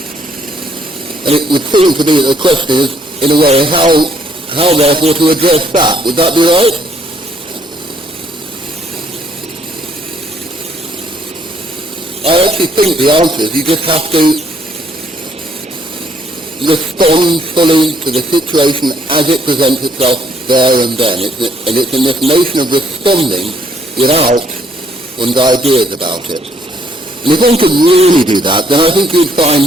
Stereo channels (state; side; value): normal; both; correlation 0.67